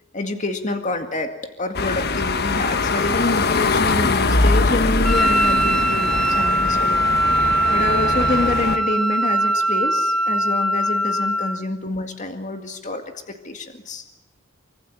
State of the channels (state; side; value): normal; both; correlation 0.56